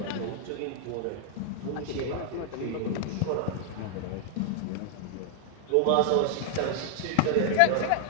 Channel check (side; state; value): both; different; correlation 0.00